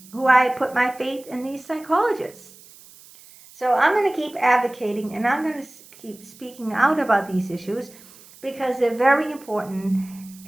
who I put my faith in these psychologists. So I'm going to keep advocating, and I'm going to keep speaking out about these issues because they're very important,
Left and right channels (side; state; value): right; noise; hiss, 22 dB below the sound